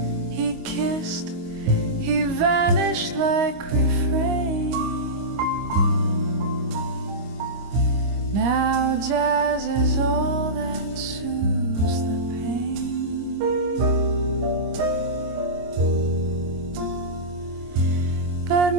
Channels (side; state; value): left; late; 25 ms